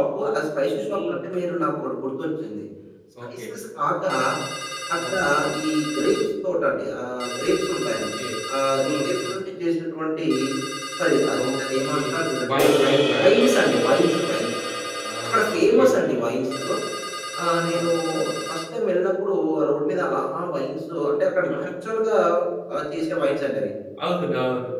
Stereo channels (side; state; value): both; identical; correlation 1.00